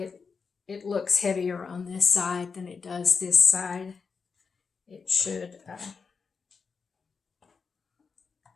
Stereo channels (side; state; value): right; quieter; 5.3 dB